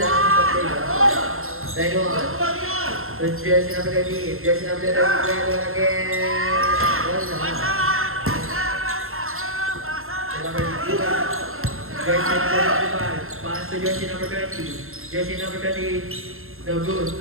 lang. Simple lang. Line 1. So jersey number 13. Jersey number 13. Line 1 again. Wala. Number 2. Jersey number 25. Pass to jersey number 20. Jersey number 20. No good.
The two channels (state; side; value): late; left; 0.62 ms